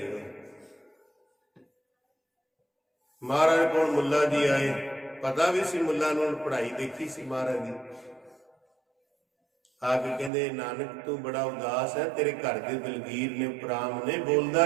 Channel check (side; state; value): left; drops out; at 10.3 s